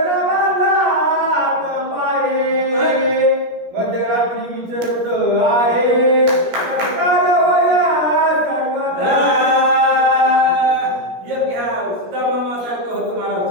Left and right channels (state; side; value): late; left; 17 ms